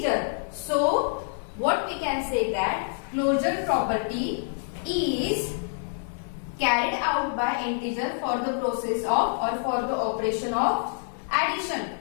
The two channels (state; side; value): silent; right; digital silence